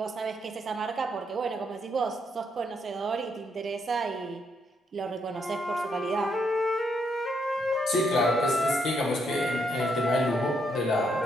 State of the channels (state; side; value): normal; both; correlation 0.75